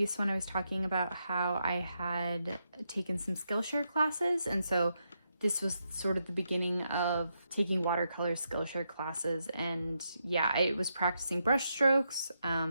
one, I was talking about how I had taken some Skillshare classes, and so this was sort of the beginning of taking watercolor Skillshare classes. And yeah, I was practicing brush strokes,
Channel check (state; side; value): inverted; both; correlation -0.82